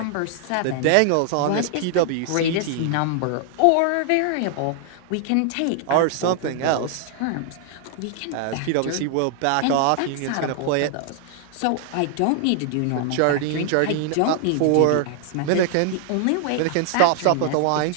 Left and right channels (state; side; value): different; both; correlation 0.00